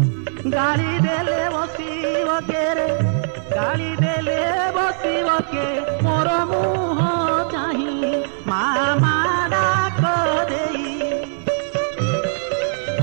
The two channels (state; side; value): silent; left; digital silence